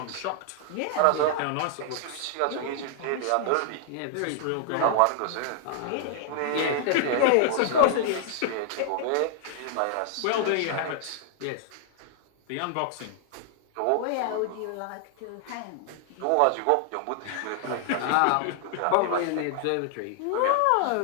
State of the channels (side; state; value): both; different; correlation 0.00